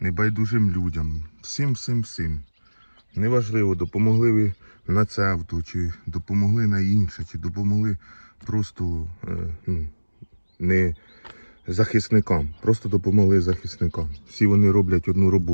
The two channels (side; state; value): both; inverted; correlation -1.00